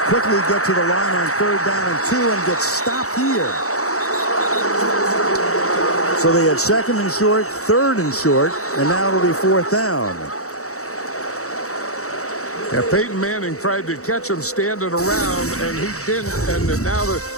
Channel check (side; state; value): right; late; 0.64 ms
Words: quickly get to the line on 3rd down and 2 and get stopped here. So they had 2nd and short, 3rd and short, and now it'll be 4th down. Yeah, Peyton Manning tried to catch him standing around, and he didn't, and now the